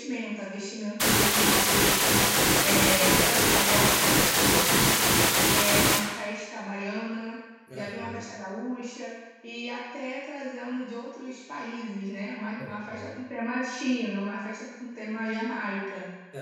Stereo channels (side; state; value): both; identical; correlation 1.00